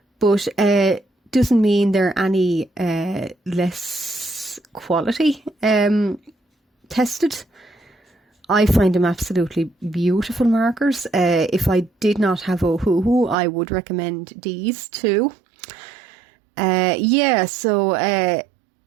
but doesn't mean they're any less quality tested. I find them absolutely beautiful markers. If I did not have Ohuhu, I would recommend these too. And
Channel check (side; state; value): left; drops out; at 13.4 s